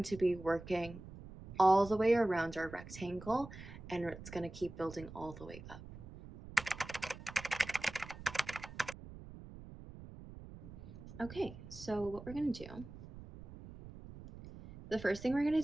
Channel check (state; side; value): noise; right; rumble, 14 dB below the sound